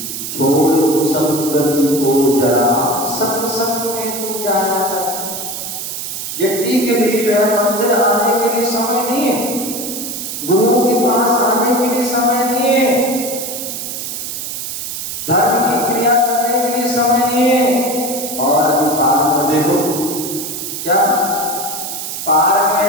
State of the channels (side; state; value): right; noise; hiss, 6 dB below the sound